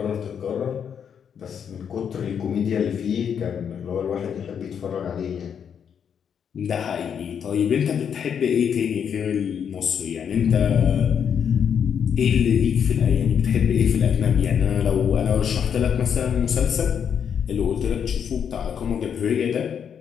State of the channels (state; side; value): quieter; right; 7.8 dB